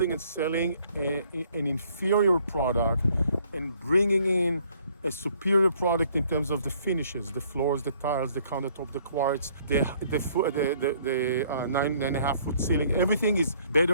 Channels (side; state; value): both; inverted; correlation -0.63